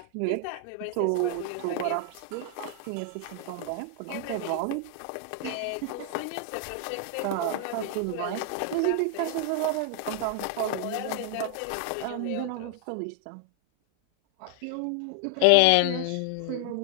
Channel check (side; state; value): both; different; correlation 0.00